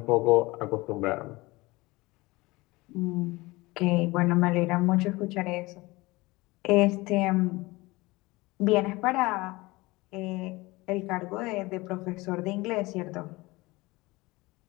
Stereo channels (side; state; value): right; quieter; 21.9 dB